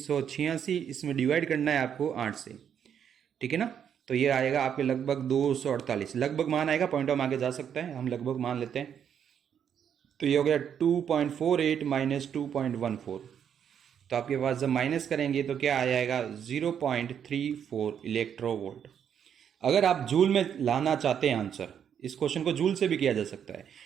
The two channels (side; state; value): left; quieter; 8.4 dB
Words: इसमें डिवाइड करना है आपको 8 से। ठीक है ना, तो ये आएगा आपके लगभग 248। लगभग मान आएगा, पॉइंट ऑफ आगे जा सकता है, हम लगभग मान लेते हैं। तो ये हो गया 2.48 माइनस 2.14। तो आपके पास जब माइनस करेंगे तो क्या आ जाएगा 0.34 इलेक्ट्रोवोल्ट। अगर आप जूल में लाना चाहते हैं आंसर, इस क्वेश्चन को जूल से भी किया जा सकता है।